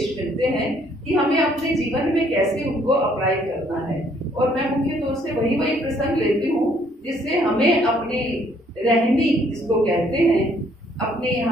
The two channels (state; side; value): normal; both; correlation 0.65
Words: मिलते हैं कि हमें अपने जीवन में कैसे उनको अप्लाई करना है। और मैं मुख्य तौर से वही प्रसंग लेती हूँ जिससे हमें अपनी रहनी, जिसको कहते हैं अपने,